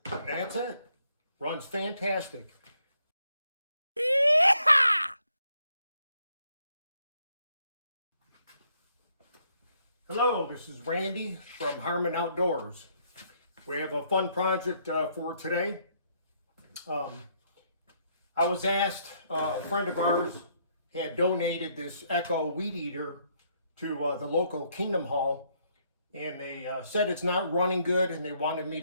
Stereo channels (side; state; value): both; inverted; correlation -0.71